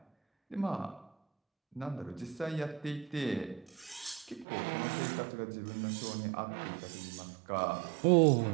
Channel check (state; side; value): drops out; left; at 4.5 s